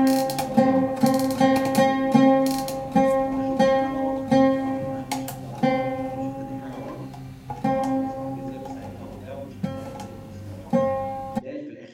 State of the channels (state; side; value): identical; both; correlation 1.00